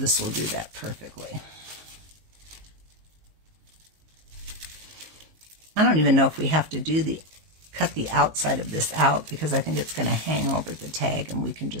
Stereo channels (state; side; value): late; left; 19 ms